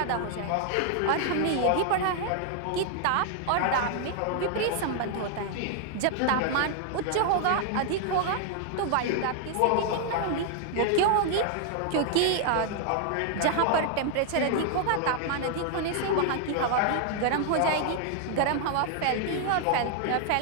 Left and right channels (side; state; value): both; different; correlation 0.00